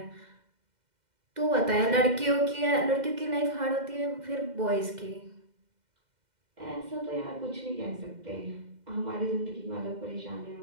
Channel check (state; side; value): late; left; 2.1 ms